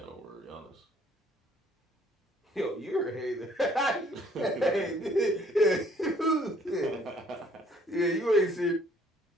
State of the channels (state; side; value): normal; both; correlation 0.61